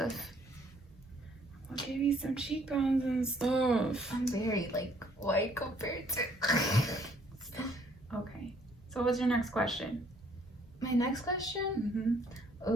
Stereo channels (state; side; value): normal; both; correlation 0.63